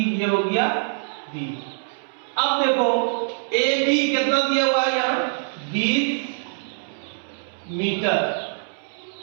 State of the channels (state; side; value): silent; left; 63 dB below the other